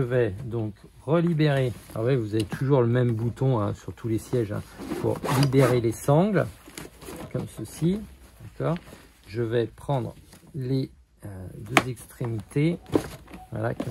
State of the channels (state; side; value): identical; both; correlation 1.00